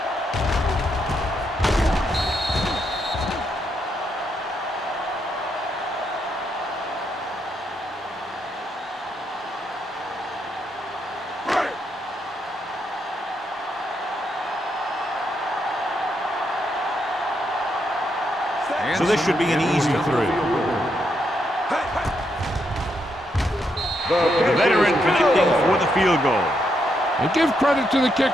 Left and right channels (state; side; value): normal; both; correlation 0.79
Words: So this should be an easy 3. The veteran connecting for the field goal. And give credit to the